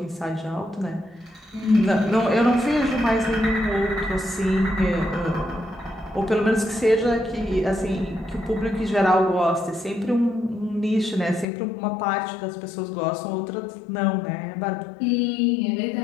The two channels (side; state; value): right; drops out; at 11.5 s